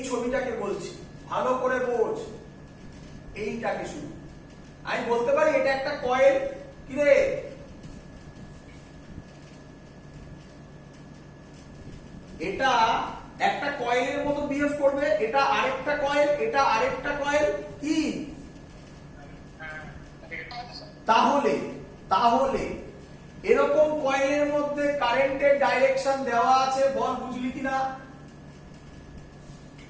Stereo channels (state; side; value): identical; both; correlation 1.00